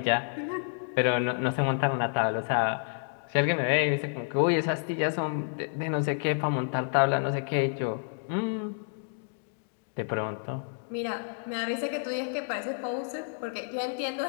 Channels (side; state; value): right; silent; digital silence